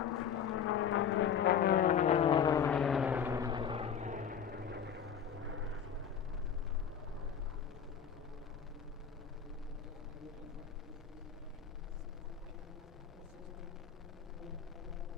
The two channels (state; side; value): quieter; right; 7.8 dB